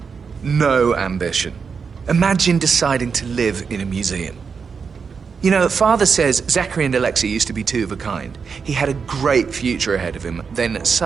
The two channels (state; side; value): quieter; left; 5.8 dB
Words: No ambition. Imagine deciding to live in a museum. You know, Father says Zachary and Alexa used to be two of a kind. He had a great future ahead of him, then